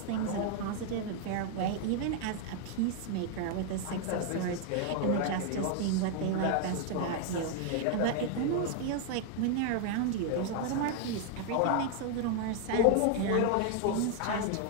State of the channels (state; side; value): different; both; correlation 0.00